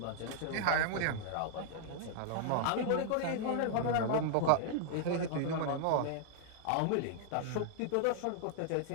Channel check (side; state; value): both; different; correlation -0.01